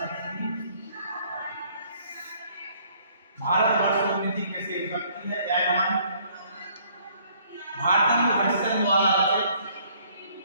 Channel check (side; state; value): both; inverted; correlation -0.61